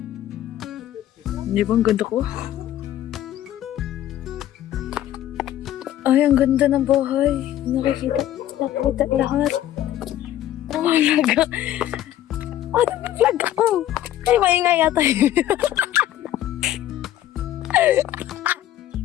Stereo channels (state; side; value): quieter; right; 12.6 dB